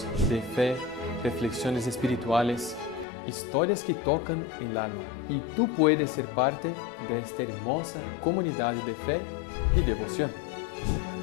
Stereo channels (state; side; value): drops out; right; at 3.1 s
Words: de fe, reflexiones espirituales, historias que tocan el alma. Y tú puedes ser parte de esta hermosa comunidad de fe y devoción.